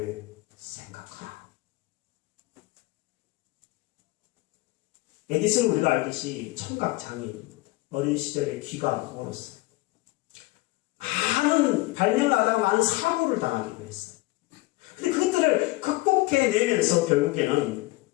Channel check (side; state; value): right; quieter; 21.1 dB